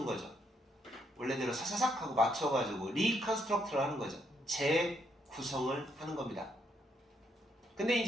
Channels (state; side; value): normal; both; correlation 0.75